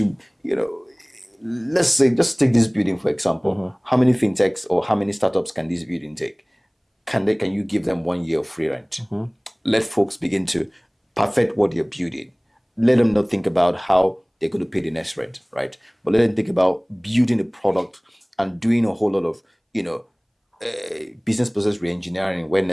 let's say, just take this building for example. How many fintechs or how many startups can this building take? Can you give them 1 year of free rent? Let folks begin to perfect what they're building. Let them not think about how they're going to pay the next rent, right? But let them think about building a product and doing a whole lot of, business process re-engineering where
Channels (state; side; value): identical; both; correlation 1.00